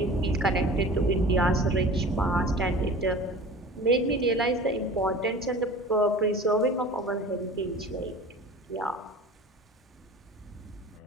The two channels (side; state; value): both; normal; correlation 0.39